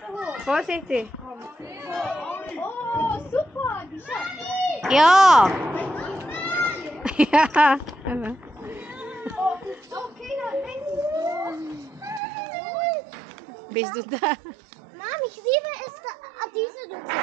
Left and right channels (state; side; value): drops out; left; at 12.2 s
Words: hoch. Vorsichtig. Oh, super. Die Schatten. Ja. Ja. Oh, okay, dann Bist du da? Mami, ich liebe es, diese Luft.